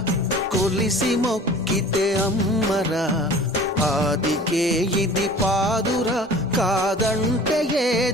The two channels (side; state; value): both; normal; correlation 0.45